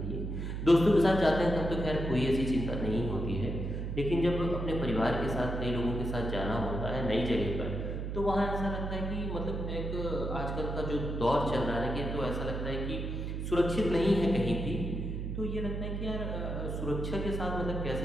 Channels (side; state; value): right; noise; hum, 3 dB below the sound